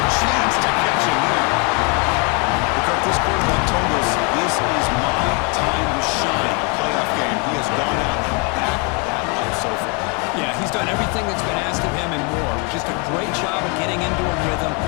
chance to catch him there. Because this quarterback told us this is my time to shine. Playoff game. He has gone out and backed that up so far. Yeah, he's done everything that's been asked of him and more. Just a great job of getting into a rhythm.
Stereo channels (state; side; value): quieter; right; 33.5 dB